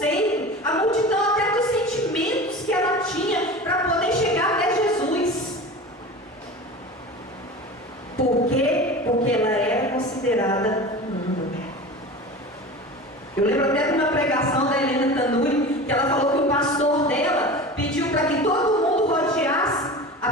a multidão até dos sentimentos que ela tinha para poder chegar até Jesus. Por quê? Porque ela é considerada imunda. Eu lembro até de uma pregação da Helena Tanuri, que ela falou que o pastor dela pediu para que todo mundo rodeasse a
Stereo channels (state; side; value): normal; both; correlation 0.33